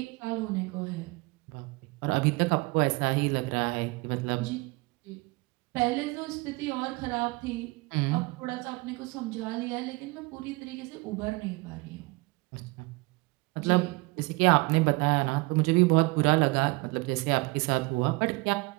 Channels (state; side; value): quieter; left; 25.3 dB